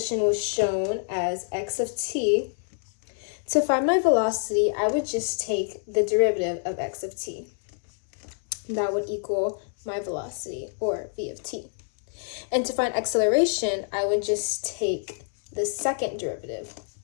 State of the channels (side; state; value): right; silent; 60 dB below the other